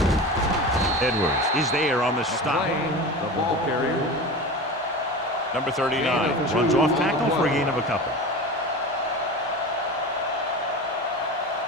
Edwards is there on the stop. The ball carrier. Number 39 runs off tackle for a gain of a couple.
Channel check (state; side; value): normal; both; correlation 0.30